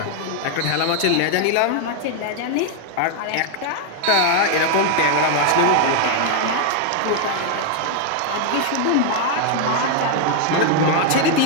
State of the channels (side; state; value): both; different; correlation 0.00